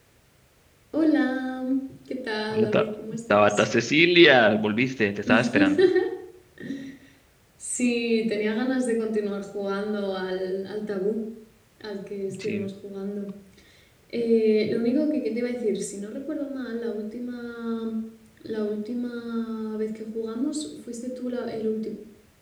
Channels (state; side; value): identical; both; correlation 1.00